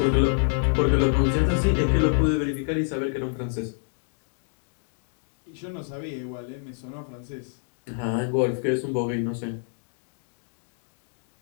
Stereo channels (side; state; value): right; silent; digital silence